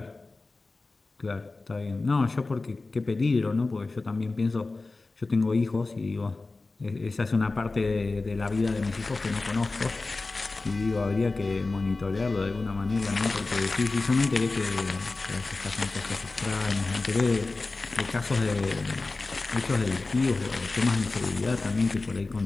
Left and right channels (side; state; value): right; quieter; 3.5 dB